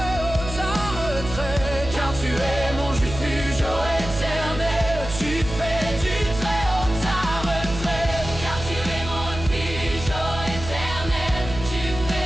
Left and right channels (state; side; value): noise; right; hum, 9 dB below the sound